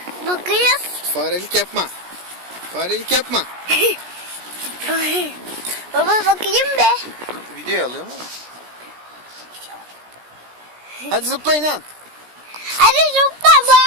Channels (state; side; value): late; left; 17 ms